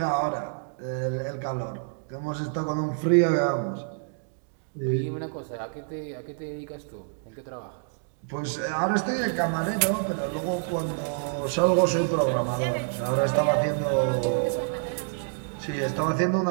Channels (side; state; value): left; silent; digital silence